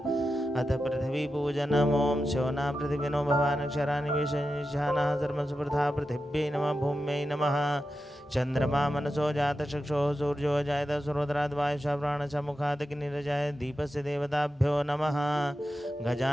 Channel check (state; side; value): normal; both; correlation 0.91